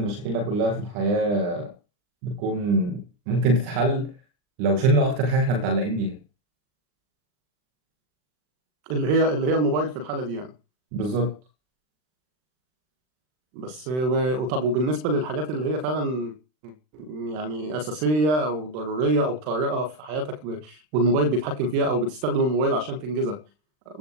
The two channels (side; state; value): left; late; 39 ms